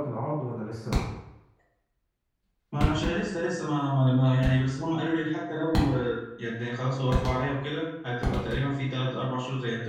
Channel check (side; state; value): both; identical; correlation 1.00